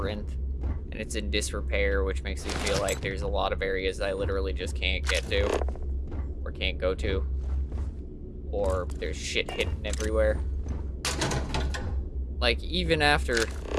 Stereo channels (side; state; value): both; identical; correlation 1.00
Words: and it's in disrepair, which makes me feel like there's a lot of areas I literally just can't get to, or can't go to, or there's shit hidden everywhere. Like, even after,